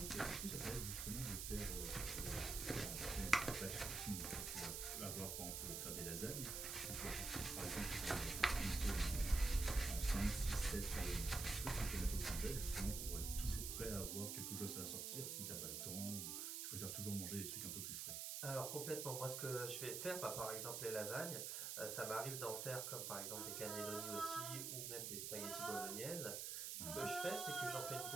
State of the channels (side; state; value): right; noise; hiss, 3 dB below the sound